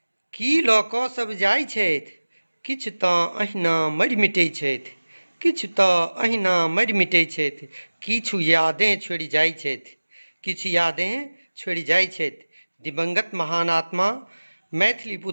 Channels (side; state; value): both; inverted; correlation -1.00